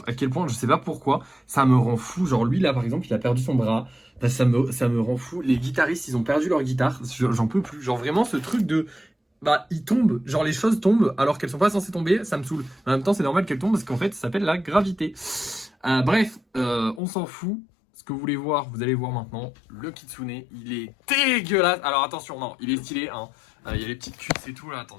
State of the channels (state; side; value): drops out; right; at 17.0 s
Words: à quel point, je sais pas pourquoi, ça me rend fou. Genre lui là par exemple, il a perdu son bras. Bah, ça me rend fou. Les guitaristes, ils ont perdu leur guitare. J'en peux plus. Genre vraiment ce truc de bah ils tombent, genre les choses tombent alors qu'elles sont pas censées tomber, ça me saoule. En même temps, c'est normal qu'elles tombent parce qu'en fait, ça s'appelle la gravité. Bref, on s'en fout. Ce que vous voulez voir, vous allez voir maintenant. Le kitsune, il est dégueulasse. Alors attention, non, il est stylé. Hein. Il y a les petites cuisses et tout là. Attends,